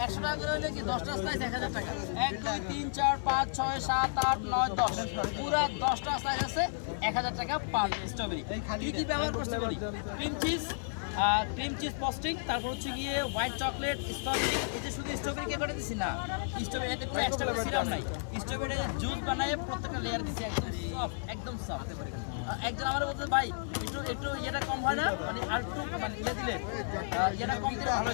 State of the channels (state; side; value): silent; right; digital silence